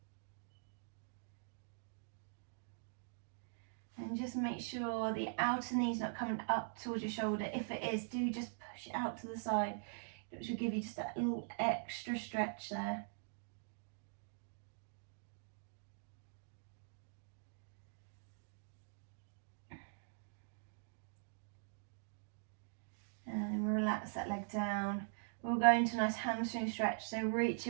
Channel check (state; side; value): silent; left; digital silence